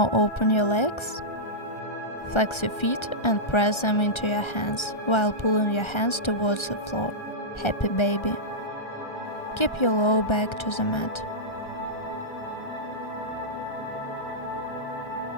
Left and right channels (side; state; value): right; late; 1.3 ms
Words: open your legs, flex your feet and press them into your hands while pulling your hands towards the floor. Happy baby. Keep your lower back to the mat.